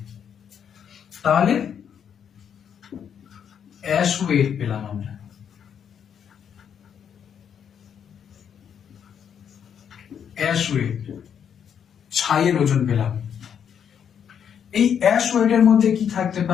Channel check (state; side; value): quieter; right; 8.1 dB